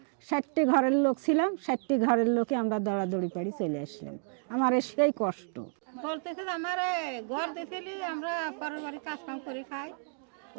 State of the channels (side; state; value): left; silent; 57 dB below the other